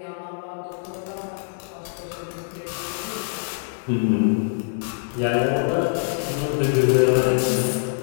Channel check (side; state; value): right; silent; digital silence